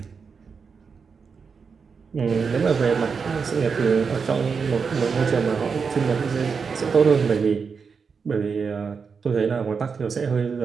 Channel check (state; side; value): quieter; left; 5.6 dB